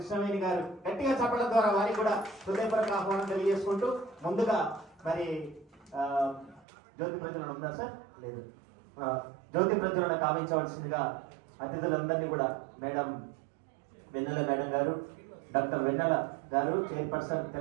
గారు గట్టిగా చెప్పడం ద్వారా వారికి కూడా హృదయపూర్వక ఆహ్వానం తెలియజేసుకుంటూ ముందుగా మరి జ్యోతి ప్రజ్వలన ఉందా సార్? లేదు. జ్యోతి ప్రజ్వలన కావించవలసిందిగా అతిథులందరినీ కూడా మేడం వెన్నెల మేడం గారు, డాక్టర్ వెన్నెల గారు, చైర్పర్సన్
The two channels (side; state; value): left; drops out; at 6.7 s